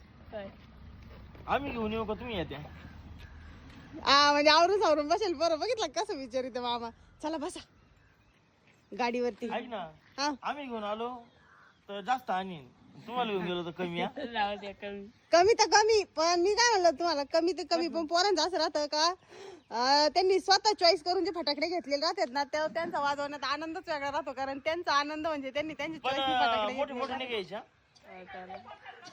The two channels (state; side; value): identical; both; correlation 1.00